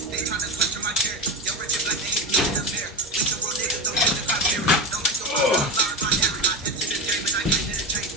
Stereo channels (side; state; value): both; normal; correlation 0.21